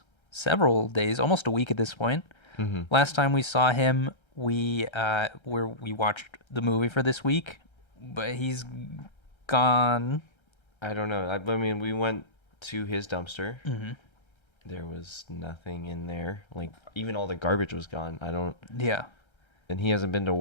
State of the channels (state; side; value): late; right; 1.3 ms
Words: several days, almost a week at this point. Mm-hmm. Last time we saw him, we watched the movie for this week, but he's gone. I don't know. I mean, we went to his dumpster. Mm-hmm. There was nothing in there. Like, even all the garbage was gone. Yeah. And he hasn't been to